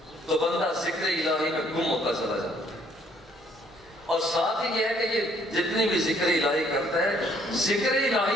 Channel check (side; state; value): both; normal; correlation 0.64